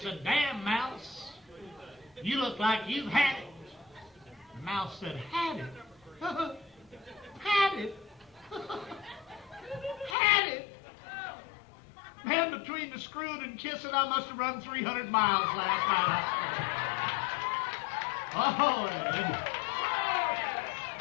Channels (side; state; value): right; drops out; at 10.2 s